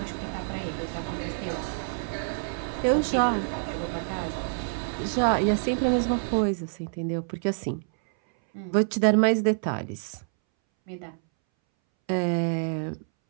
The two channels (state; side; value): silent; left; 60 dB below the other